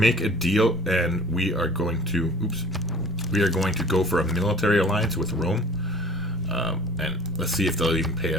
a deal, and we are going to... Oops. We are going to go for a military alliance with Rome. And let's see if they'll even pay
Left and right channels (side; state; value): both; normal; correlation 0.47